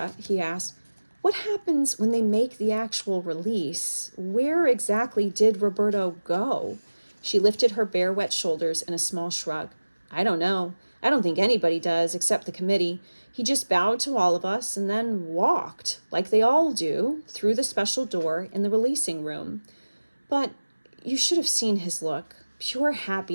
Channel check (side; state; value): both; inverted; correlation -1.00